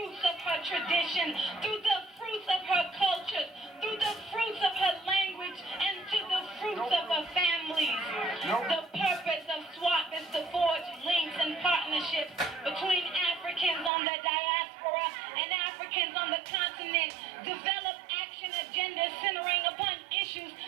of her tradition, through the fruits of her culture, through the fruits of her language, and to the fruits of her families. The purpose of SWAP is to forge links and partnerships between Africans on the diaspora and Africans on the continent, develop action agendas centering upon issues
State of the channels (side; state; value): left; drops out; at 13.9 s